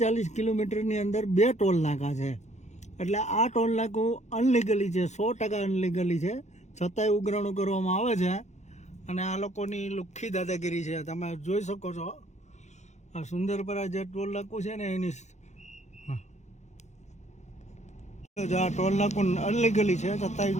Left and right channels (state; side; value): late; right; 0.33 ms